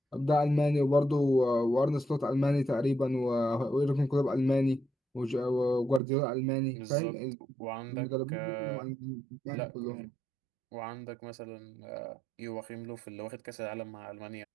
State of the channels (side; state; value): left; drops out; at 6.0 s